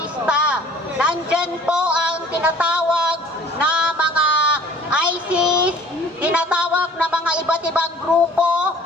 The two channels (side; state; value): both; normal; correlation 0.51